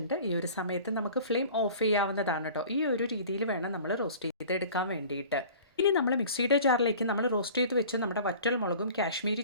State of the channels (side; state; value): both; inverted; correlation -0.43